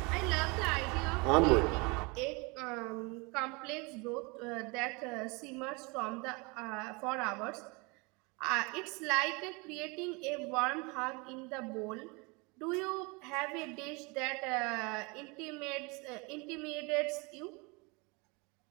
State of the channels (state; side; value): quieter; left; 28.4 dB